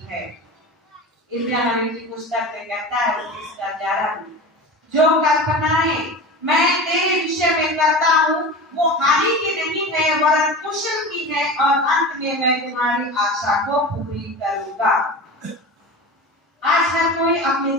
है। इब्रानियों नबी की पुस्तक में कहता है 11 में, जो कल्पनाएं मैं तेरे विषय में करता हूँ वो हानि की नहीं है, वरन कुशल की है, और अंत में मैं तुम्हारी आशा को पूरी करूंगा। आज हर कोई अपने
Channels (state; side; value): normal; both; correlation 0.30